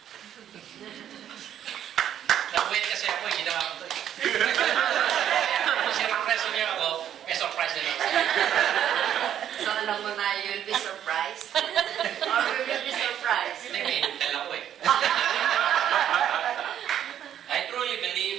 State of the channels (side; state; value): left; quieter; 10.2 dB